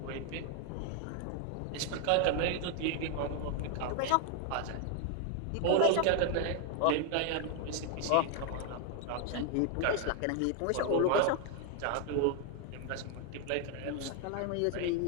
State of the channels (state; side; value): different; both; correlation 0.01